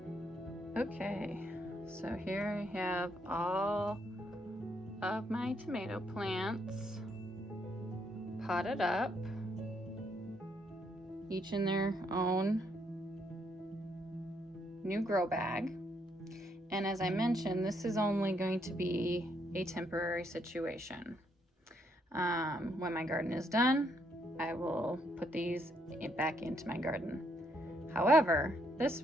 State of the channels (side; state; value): both; normal; correlation 0.74